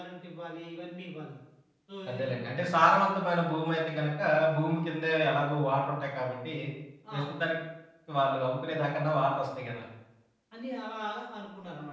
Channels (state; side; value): identical; both; correlation 1.00